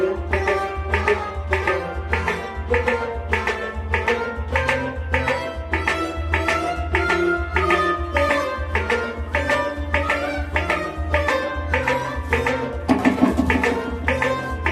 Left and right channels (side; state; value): both; identical; correlation 1.00